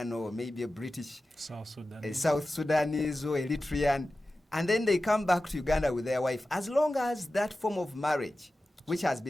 or maybe a British, South Sudan. a South Sudanese or Eritrean, and then they come back to Uganda with their wife, as long as that form of marriage which has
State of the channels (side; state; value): both; normal; correlation 0.94